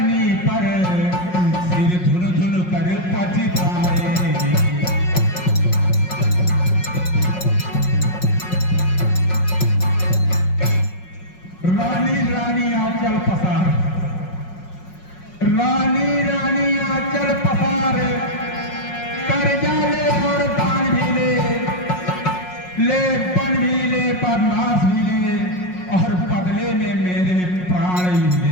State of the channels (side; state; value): right; late; 5.5 ms